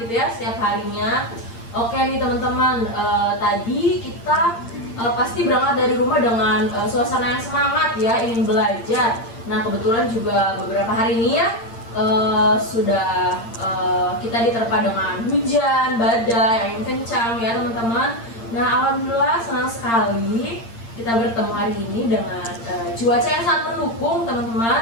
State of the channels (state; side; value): late; right; 8.7 ms